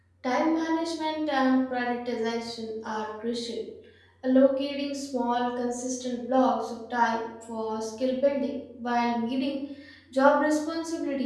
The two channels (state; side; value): identical; both; correlation 1.00